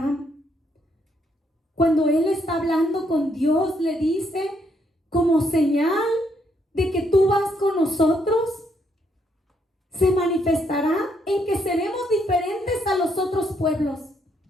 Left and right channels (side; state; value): both; normal; correlation 0.73